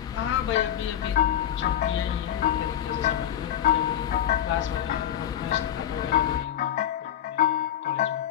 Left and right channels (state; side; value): quieter; right; 10.6 dB